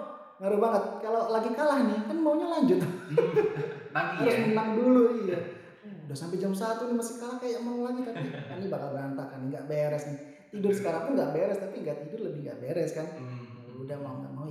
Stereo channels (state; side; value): identical; both; correlation 1.00